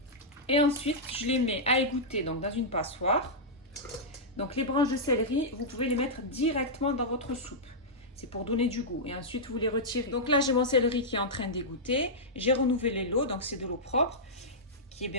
Et ensuite, je les mets à égoutter donc dans une passoire. Donc, les branches de céleri, vous pouvez les mettre directement dans votre soupe. C'est pour donner du goût. Et ensuite, vous les retirez. Donc là, j'ai mon céleri qui est en train d'égoutter. J'ai renouvelé l'eau, donc c'est de l'eau propre, qui est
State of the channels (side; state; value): both; normal; correlation -0.10